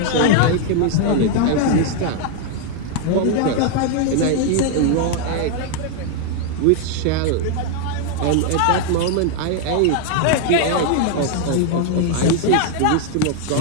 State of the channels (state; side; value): different; both; correlation 0.00